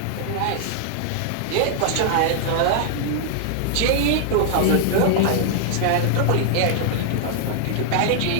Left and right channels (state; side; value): different; both; correlation 0.00